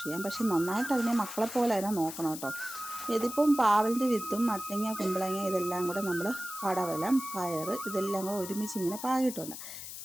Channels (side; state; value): left; noise; hiss, 10 dB below the sound